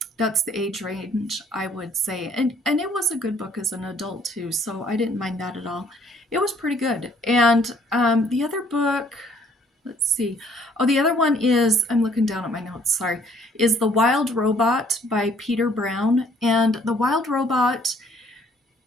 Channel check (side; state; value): both; normal; correlation 0.61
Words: that's the age range, I would say. And it was a good book as an adult too, so I didn't mind that at all. It was pretty good. And the other book, let's see. Oh, the other one is, I'm looking down at my notes, sorry, is The Wild Robot by Peter Brown. And The Wild Robot,